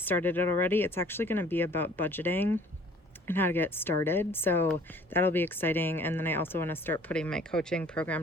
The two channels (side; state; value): both; normal; correlation 0.53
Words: it already. It's actually going to be about budgeting and how to get started, so that'll be exciting. And then I also want to start putting my coaching